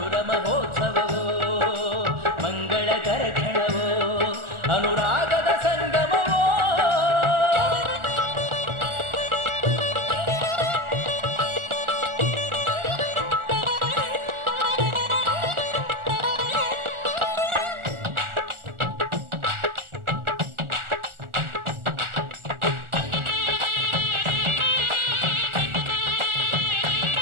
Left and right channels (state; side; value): late; left; 1.4 ms